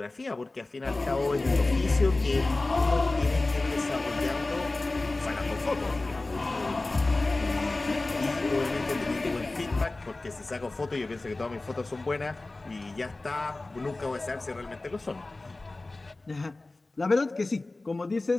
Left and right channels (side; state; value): right; quieter; 3.1 dB